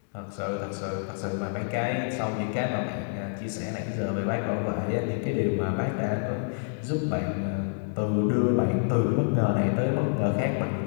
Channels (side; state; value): right; silent; digital silence